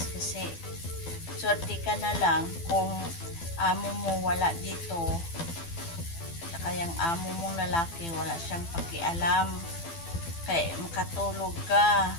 kasi swerte ka na lang kung amo mo wala dito. Saka yung amo mong lalaki wala siyang pakialam. Kaya makatulog ka.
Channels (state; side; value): late; right; 12 ms